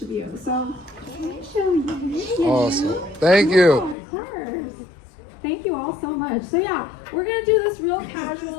of you. So let me show you. Awesome. Thank you. Of course. Thank you all so much. So yeah, we're gonna do this real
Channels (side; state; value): right; drops out; at 4.0 s